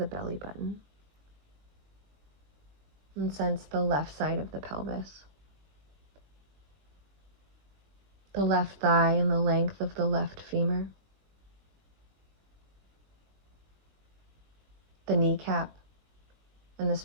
belly button and sense the left side of the pelvis, the left thigh and the length of the left femur, the kneecap and the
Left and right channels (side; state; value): left; late; 20 ms